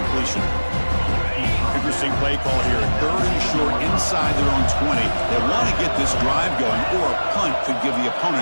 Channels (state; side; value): inverted; both; correlation -1.00